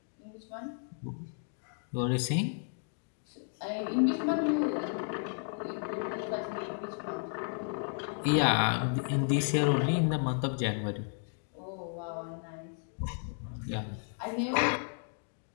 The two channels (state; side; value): silent; right; 56 dB below the other